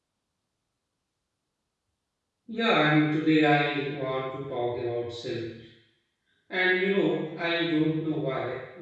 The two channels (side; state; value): both; identical; correlation 1.00